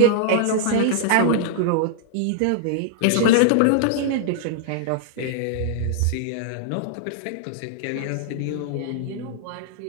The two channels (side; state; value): both; different; correlation -0.01